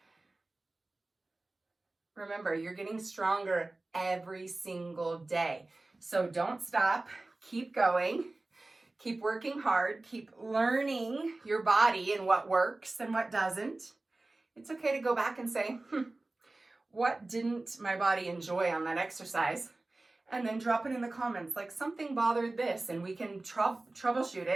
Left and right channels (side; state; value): left; quieter; 3.0 dB